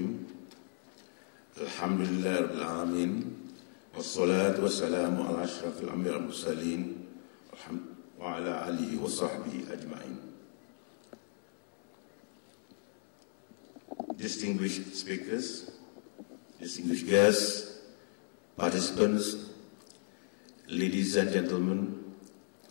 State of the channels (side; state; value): right; silent; 54 dB below the other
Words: Alhamdulillah Rabbil Alamin. Wassalatu wassalamu ala ashrafil anbiya wal mursalin wa ala alihi wa sahbihi ajma'in. Distinguished speakers, distinguished guests, participants, ladies and gentlemen,